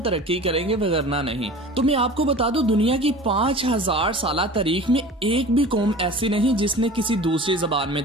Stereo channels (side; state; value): both; normal; correlation 0.39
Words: करेंगे, वगरना नहीं। तो मैं आपको बता दूं, दुनिया की 5000 साल तारीख में एक भी कौम ऐसी नहीं जिसने किसी दूसरी जबान में